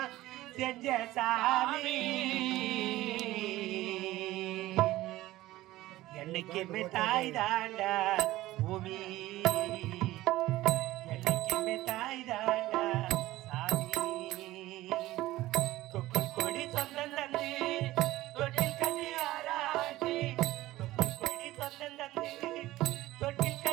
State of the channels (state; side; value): quieter; left; 16.7 dB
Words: செஞ்ச சாமி என்னைக்குமே தாய் தாண்டா பூமி என்னைக்குமே தாய் தாண்டா சாமி தொப்புள் கொடி சொந்தம் தந்து தொட்டில் கட்டி ஆராட்டி தொப்புள் கொடி சொந்தம் தந்து தொட்டில்